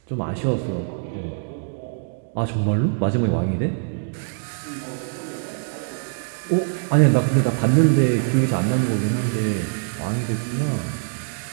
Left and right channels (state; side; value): silent; left; digital silence